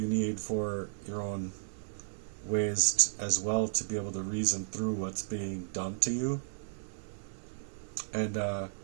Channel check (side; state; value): left; silent; 55 dB below the other